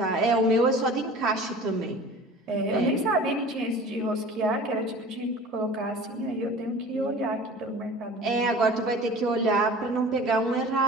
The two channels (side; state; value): both; normal; correlation 0.42